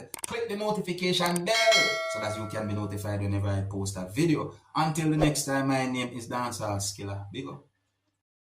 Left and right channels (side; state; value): both; identical; correlation 1.00